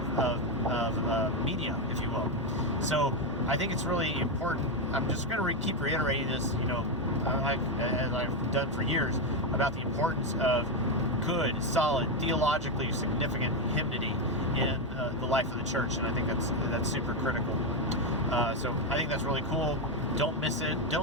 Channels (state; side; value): normal; both; correlation 0.07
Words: media, if you will. So I think it's really important. I'm just going to keep reiterating this, as I've done for years, about the importance of good, solid, theologically significant hymnody in the life of the church, and I think that's super critical. So I think that's really cool. Don't miss it.